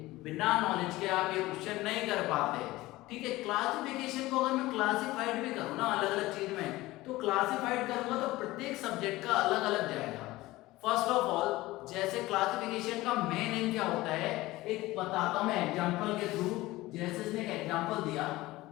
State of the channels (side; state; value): right; quieter; 18.5 dB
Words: बिना नॉलेज के आप ये क्वेश्चन नहीं कर पाते। ठीक है, क्लासिफिकेशन को अगर मैं क्लासिफाइड भी करूँ ना अलग अलग चीज में, तो क्लासिफाइड करूंगा तो प्रत्येक सब्जेक्ट का अलग अलग जाएगा। फर्स्ट ऑफ ऑल, जैसे क्लासिफिकेशन का मेन एम क्या होता है, एक बताता हूं मैं एग्जांपल के थ्रू। जैसे इसने एक एग्जांपल दिया,